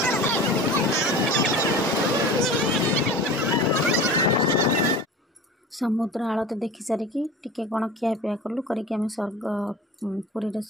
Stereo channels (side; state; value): both; normal; correlation 0.36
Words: समुद्र आलती देखी सारिकी टिके कौन खियापिया कलु करके आम स्वर्ग पुरी